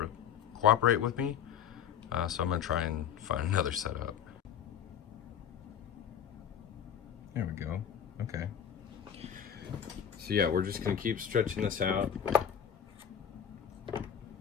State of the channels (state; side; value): quieter; right; 8.7 dB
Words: with me, so I'm going to try and find another setup. There we go. Okay. So yeah, we're just going to keep stretching this out